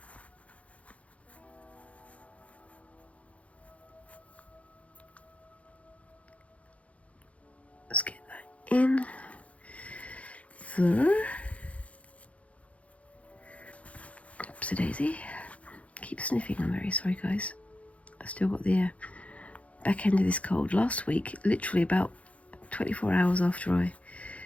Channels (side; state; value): right; late; 0.065 ms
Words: Let's get that in there. Oopsie-daisy. Keep sniffing, I'm very sorry, guys. I've still got the back end of this cold. Last week, literally about 24 hours after I